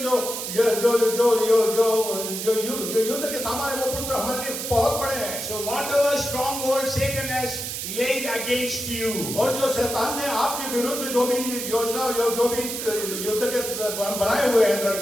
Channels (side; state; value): right; noise; hiss, 5 dB below the sound